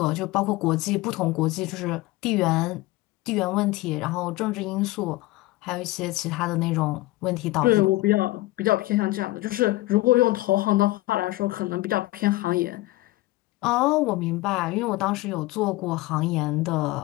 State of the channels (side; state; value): right; quieter; 19.1 dB